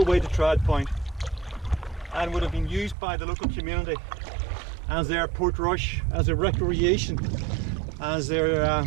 the way to Trad Point, and would have been used by the local community as their port rush, as a recreation, as their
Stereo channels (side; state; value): left; drops out; at 3.0 s